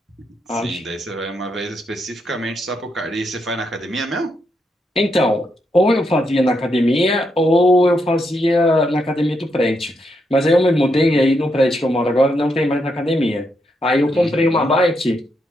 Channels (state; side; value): normal; both; correlation 0.80